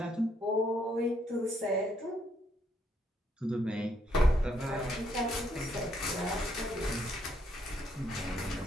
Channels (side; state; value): both; normal; correlation 0.73